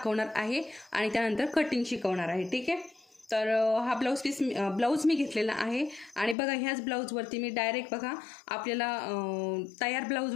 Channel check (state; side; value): drops out; right; at 6.4 s